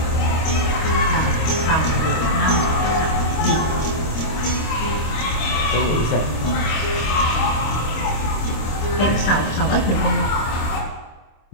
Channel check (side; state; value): right; late; 26 ms